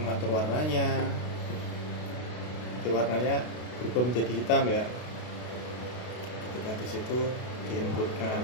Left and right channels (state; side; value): late; right; 32 ms